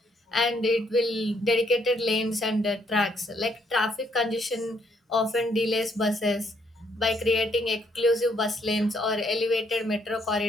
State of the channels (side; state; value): both; normal; correlation 0.70